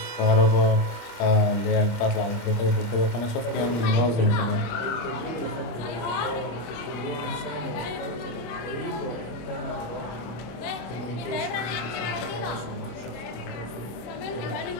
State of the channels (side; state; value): right; late; 26 ms